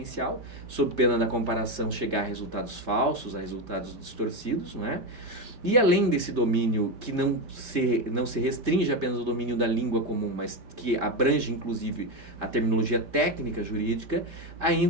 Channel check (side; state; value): left; late; 5.1 ms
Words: sob pena da comparação chegar a resultados falsos, a resultados distorcidos, não é? E além desse domínio, que não se restringe apenas ao domínio da língua comum, mas que abrange inclusive a terminologia técnica jurídica,